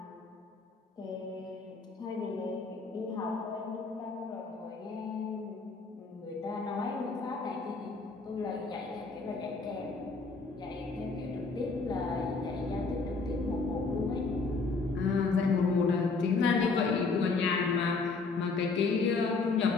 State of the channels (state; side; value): quieter; right; 4.1 dB